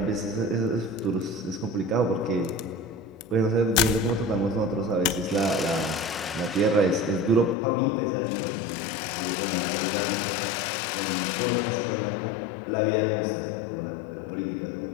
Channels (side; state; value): right; drops out; at 7.6 s